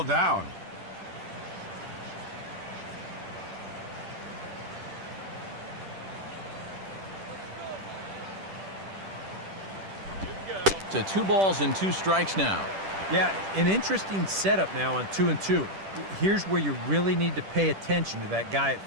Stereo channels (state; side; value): late; left; 10 ms